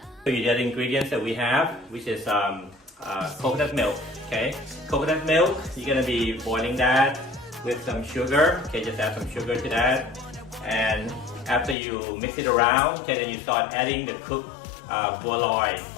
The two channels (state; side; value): drops out; right; at 11.8 s